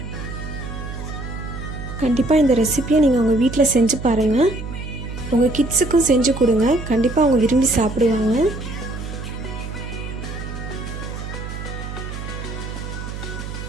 கண்டிப்பாக இந்த ரெசிபியை நீங்கள் உங்கள் வீட்டில் செஞ்சு பாருங்கள். உங்கள் கிட்ஸுக்கும் செஞ்சு கொடுங்க, கண்டிப்பாக அவங்க விரும்பி சாப்பிடுவாங்க.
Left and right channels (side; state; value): right; noise; hum, 8 dB below the sound